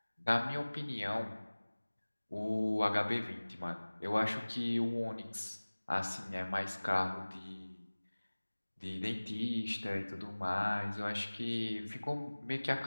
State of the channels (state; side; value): inverted; both; correlation -1.00